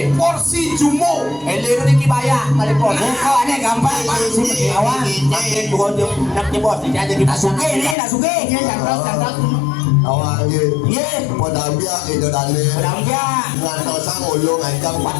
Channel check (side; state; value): right; drops out; at 8.0 s